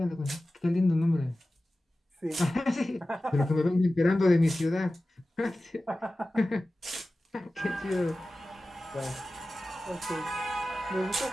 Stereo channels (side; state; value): both; normal; correlation 0.96